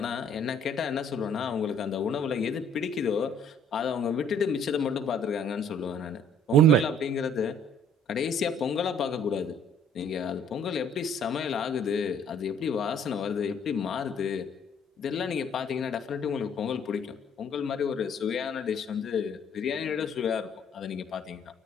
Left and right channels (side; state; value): both; normal; correlation 0.59